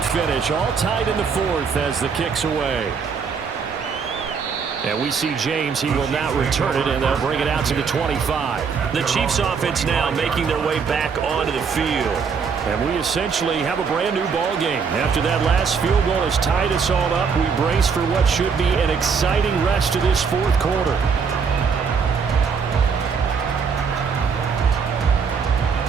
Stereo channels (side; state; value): left; quieter; 5.8 dB